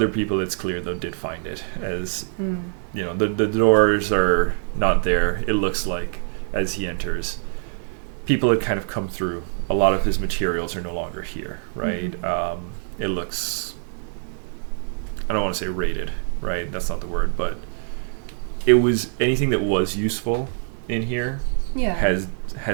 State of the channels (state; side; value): silent; left; 58 dB below the other